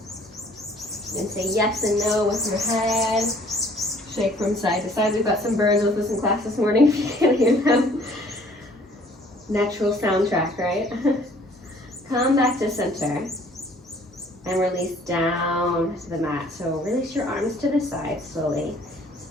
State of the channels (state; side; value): normal; both; correlation 0.57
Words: And say yes and no with your head. Shake from side to side. We've got some birds with us in class this morning, if you can't hear them. Natural soundtrack, right? Come back to center and release down to the mat. So release your arms to the side slowly.